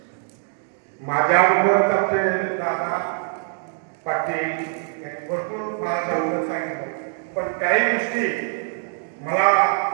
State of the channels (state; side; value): silent; left; 63 dB below the other